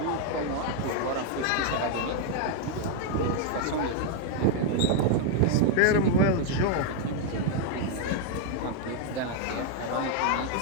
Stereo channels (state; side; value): different; both; correlation 0.00